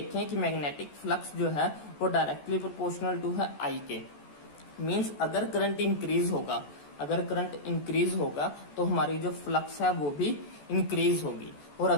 कि मैग्नेटिक फ्लक्स जो है वो डायरेक्टली प्रोपोर्शनल टू है I के। मीन्स अगर करंट इंक्रीज होगा तो हमारी जो फ्लक्स है वो भी इंक्रीज होगी, और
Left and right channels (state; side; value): late; right; 14 ms